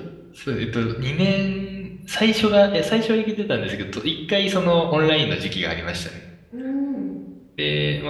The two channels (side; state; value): both; identical; correlation 1.00